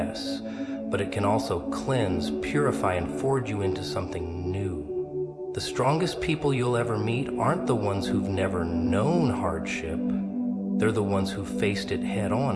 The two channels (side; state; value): both; identical; correlation 1.00